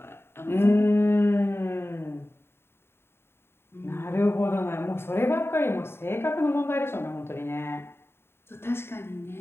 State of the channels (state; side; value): late; right; 0.11 ms